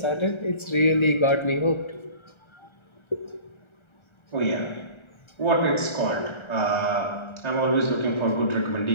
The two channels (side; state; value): right; late; 1.3 ms